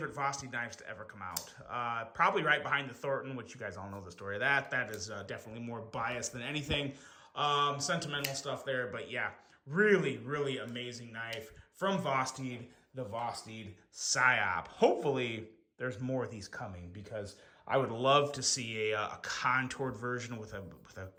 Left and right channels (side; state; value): both; identical; correlation 1.00